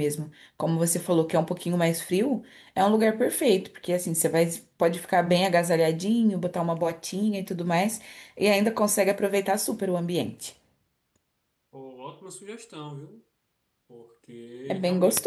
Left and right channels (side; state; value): both; identical; correlation 1.00